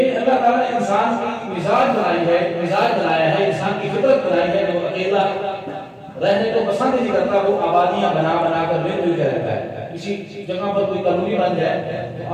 اللہ تعالیٰ نے انسان کی مزاج بنائی ہے، مزاج بنایا ہے، انسان کی فطرت بنائی ہے کہ وہ اکیلا رہنے کو پسند نہیں کرتا، وہ آبادیاں بنا بنا کر مل مل کے رہتا ہے۔ کسی جگہ پر کوئی کالونی بن جائے تو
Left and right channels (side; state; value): both; identical; correlation 1.00